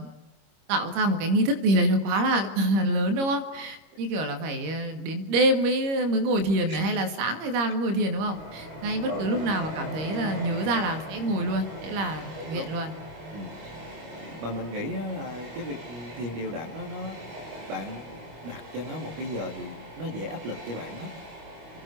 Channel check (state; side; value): late; left; 26 ms